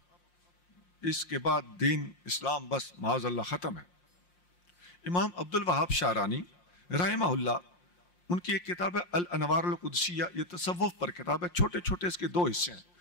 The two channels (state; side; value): late; right; 5.6 ms